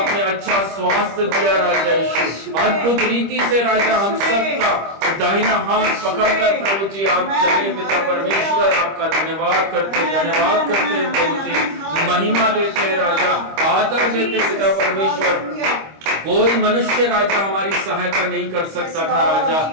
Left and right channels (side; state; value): left; late; 25 ms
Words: अच्छा स्वास्थ्य दिया राजा यीशु। अद्भुत रीति से राजा हम सबका दाहिना हाथ पकड़कर प्रभु जी आप चले पिता परमेश्वर। आपका धन्यवाद करते प्रभु जी, महिमा देते राजा, आदर देते पिता परमेश्वर। कोई मनुष्य राजा हमारी सहायता नहीं कर सकता था राजा,